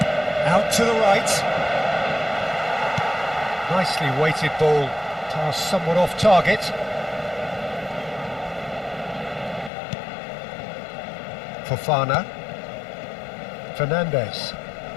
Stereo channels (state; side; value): drops out; right; at 9.7 s